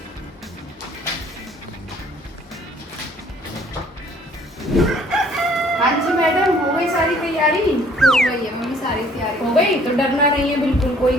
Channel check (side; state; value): both; normal; correlation 0.59